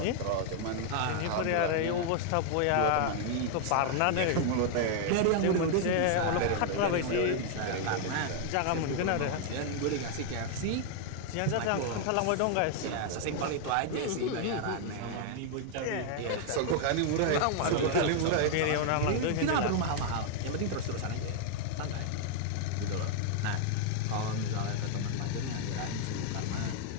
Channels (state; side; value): different; both; correlation 0.00